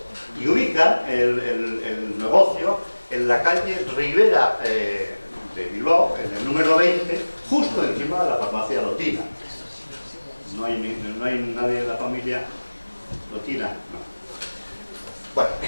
y ubica el negocio en la calle Rivera de Bilbao, en el número 20, justo encima de la farmacia Lotina. No hay nadie de la familia Lotina, no. Bueno,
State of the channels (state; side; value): inverted; both; correlation -1.00